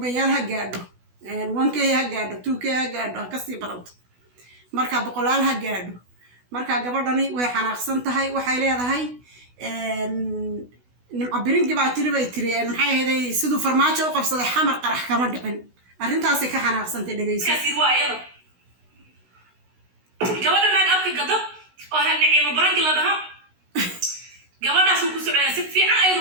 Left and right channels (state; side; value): late; left; 16 ms